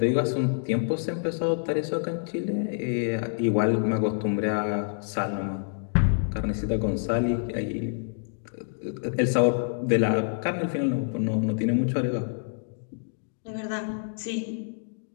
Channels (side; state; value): right; silent; digital silence